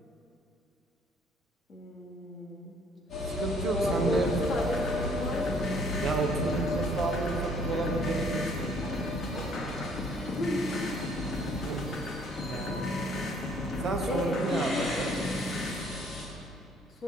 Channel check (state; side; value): normal; both; correlation 0.61